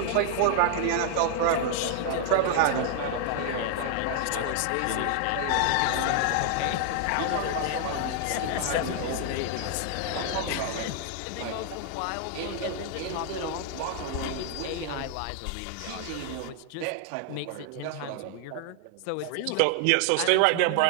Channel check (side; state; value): both; different; correlation 0.00